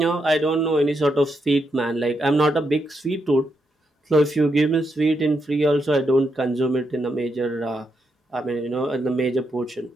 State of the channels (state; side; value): normal; both; correlation 0.81